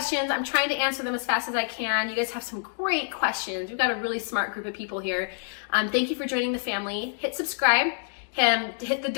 I'm trying to answer them as fast as I can. You guys have some great questions. We've got a really smart group of people here. Thank you for joining the family. Hit subscribe. hit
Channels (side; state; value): right; silent; digital silence